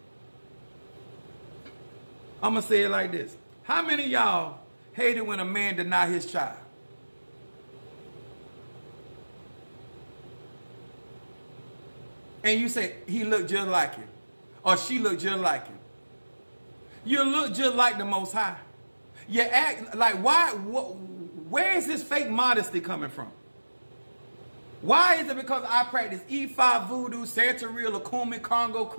I'm going to say it like this. How many of y'all hate it when a man deny his child? And you say, he looked just like him. Or she looked just like him. You look just like the Most High. You act like, where is this fake modesty coming from? Why is it because I practice E5 voodoo, Santeria, Lakumi, Congo,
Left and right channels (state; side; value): inverted; both; correlation -1.00